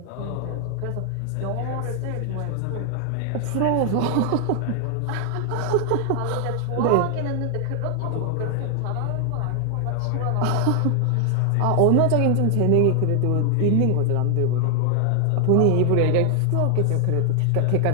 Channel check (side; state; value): both; different; correlation 0.00